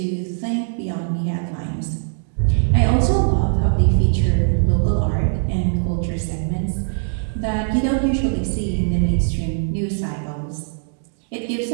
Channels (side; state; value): left; silent; digital silence